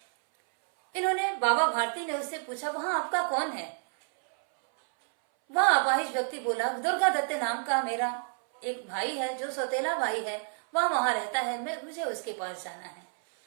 इन्होंने, बाबा भारती ने उससे पूछा, वहाँ आपका कौन है? वह अपाहिज व्यक्ति बोला, दुर्गा दत्त नाम का मेरा एक भाई है, जो सौतेला भाई है, वह वहाँ रहता है, मुझे उसके पास जाना है।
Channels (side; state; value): left; silent; 58 dB below the other